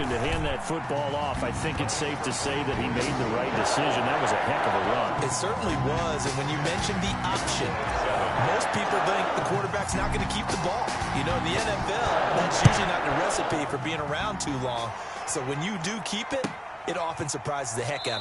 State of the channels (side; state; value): both; identical; correlation 1.00